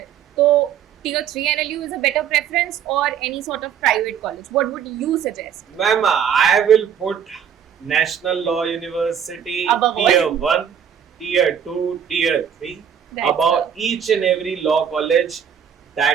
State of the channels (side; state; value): left; quieter; 8.4 dB